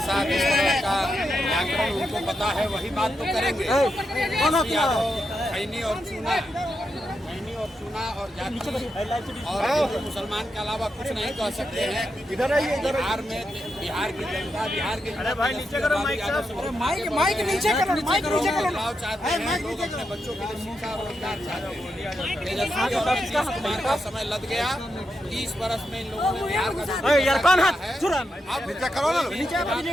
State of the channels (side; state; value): both; normal; correlation 0.85